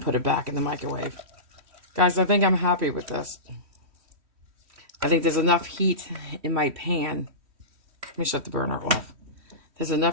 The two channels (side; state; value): left; late; 3.1 ms